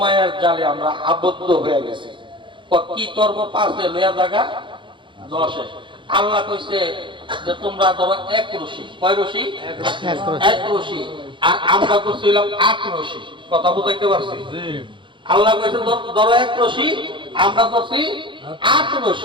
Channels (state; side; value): late; left; 0.23 ms